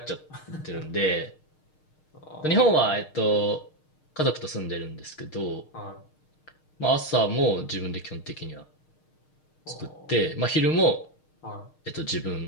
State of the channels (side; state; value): right; late; 6.5 ms